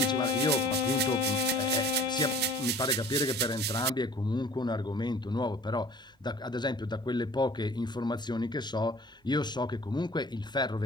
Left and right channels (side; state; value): both; normal; correlation 0.48